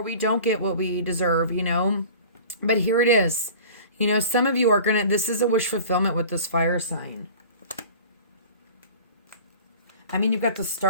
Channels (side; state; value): both; inverted; correlation -0.41